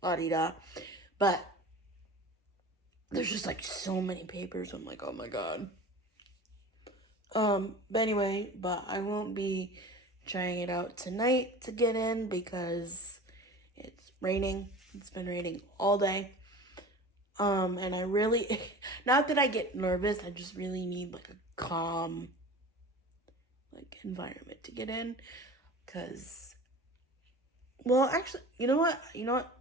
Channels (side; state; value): both; normal; correlation 0.37